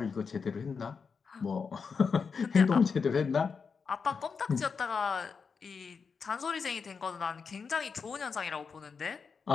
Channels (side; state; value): right; quieter; 5.5 dB